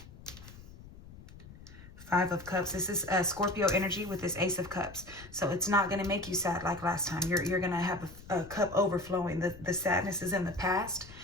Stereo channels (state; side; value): noise; left; rumble, 18 dB below the sound